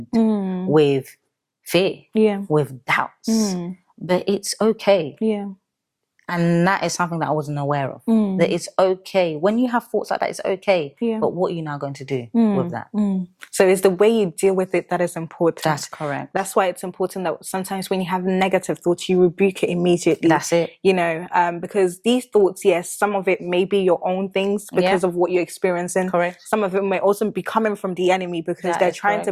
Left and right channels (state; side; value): identical; both; correlation 1.00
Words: with fear, with doubts. But it's okay. And that is something that I wasn't aware of. That it's okay. When you have thoughts like that, it's okay. But what are you now going to do with that? So it's the way you deal with it that is important. That's correct. That's why it's important that sometimes when you have negative thoughts, you rebuke it immediately. That's it. You know, because these thoughts, yes, some of it may be your own things because of what you're experiencing. Correct. Some of it may also be coming from the enemy because they're trying to